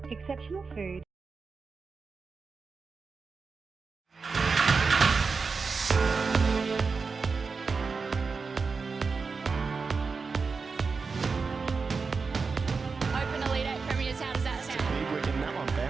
Exceptional food. Open a lead at Premier's. How does that sound? Big wicket, that one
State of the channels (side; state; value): left; quieter; 4.7 dB